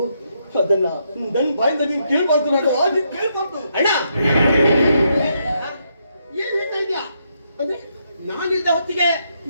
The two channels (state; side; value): inverted; both; correlation -0.78